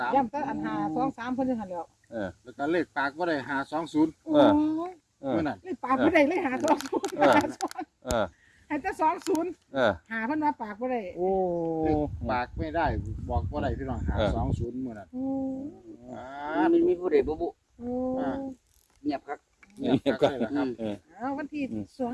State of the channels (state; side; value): identical; both; correlation 1.00